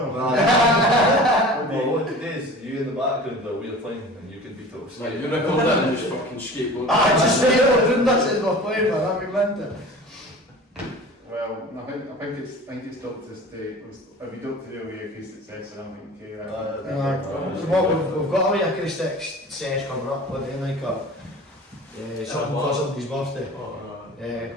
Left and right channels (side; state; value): both; normal; correlation 0.40